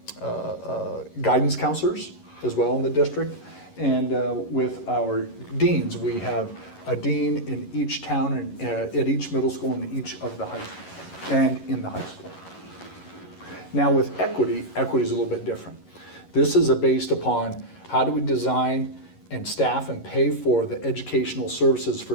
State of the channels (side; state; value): right; late; 11 ms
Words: guidance counselors as well in the district. And with our deans, we have a dean in each town and at each middle school and each of the high school and in the high school. Now with equity is a little bit different. This is based upon how do we design and staff and pay for the educational services for